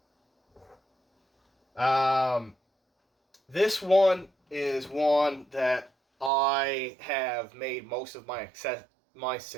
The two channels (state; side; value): drops out; left; at 6.3 s